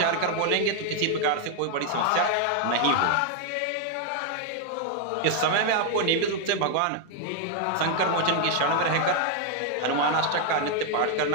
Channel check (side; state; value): both; different; correlation 0.00